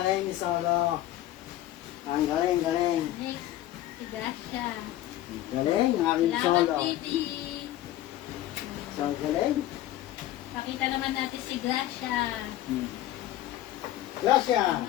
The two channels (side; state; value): right; quieter; 14.2 dB